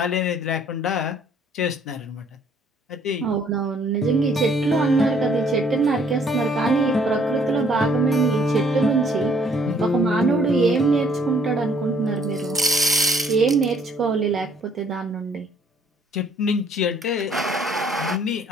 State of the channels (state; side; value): normal; both; correlation 0.62